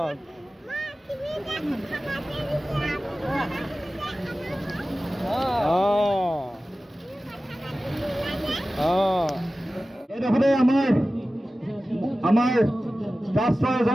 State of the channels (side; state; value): both; normal; correlation 0.96